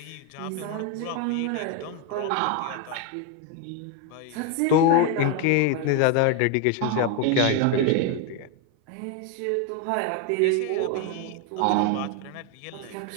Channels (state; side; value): different; both; correlation 0.01